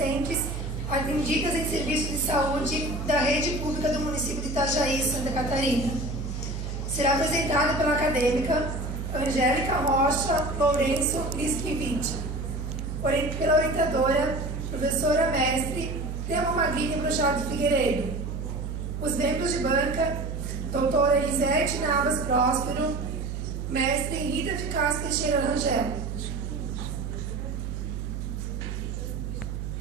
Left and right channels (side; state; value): right; noise; hum, 5 dB below the sound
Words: atendidas em serviços de saúde da rede pública do município de Itajaí, Santa Catarina. Será apresentado pela acadêmica Angélica Rocha Lourenço Liskiewicz, pela orientadora, professora mestre Thelma Magrini Brochado Figueiredo. Os membros de banca, doutora Elisete Navas Próspero, mestre Rita de Castro Teixeira Rangel.